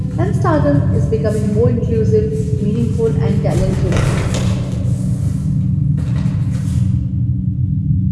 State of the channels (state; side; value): identical; both; correlation 1.00